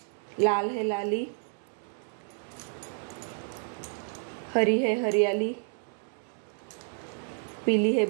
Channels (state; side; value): silent; left; 58 dB below the other